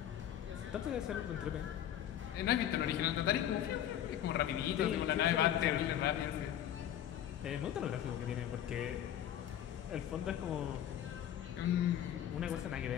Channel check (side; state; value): right; quieter; 10.9 dB